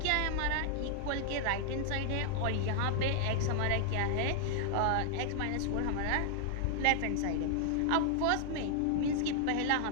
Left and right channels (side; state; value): both; different; correlation -0.01